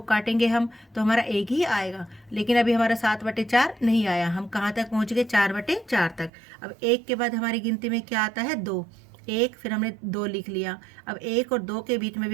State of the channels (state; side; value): drops out; left; at 6.3 s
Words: काटेंगे हम तो हमारा 1 ही आएगा, लेकिन अभी हमारा 7/4 नहीं आया। हम कहाँ तक पहुँच गए, 4/4 तक। अब 1 के बाद हमारी गिनती में क्या आता है, 2। 1 फिर हमने 2 लिख लिया। अब 1 और 2 के बीच में